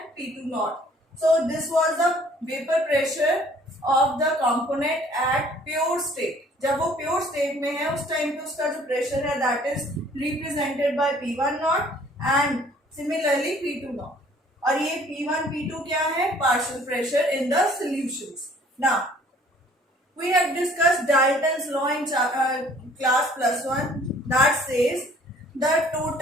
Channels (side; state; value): both; normal; correlation 0.56